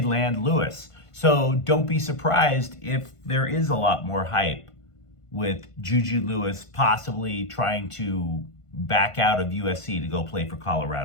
land Lewis. So don't be surprised if there is a lot more hype with Juju Lewis possibly trying to back out of USC to go play for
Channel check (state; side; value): late; right; 1.5 ms